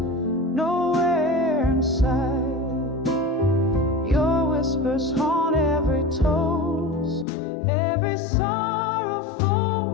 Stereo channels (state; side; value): drops out; right; at 7.2 s